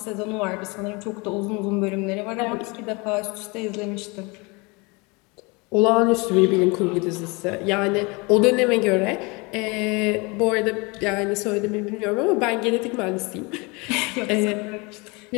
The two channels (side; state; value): right; quieter; 27.8 dB